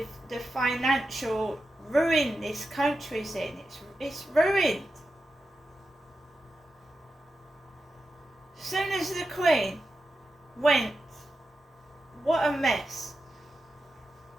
the financial ruin this country's in. It's ruined. As soon as the Queen went, what a mess.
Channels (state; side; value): normal; both; correlation 0.89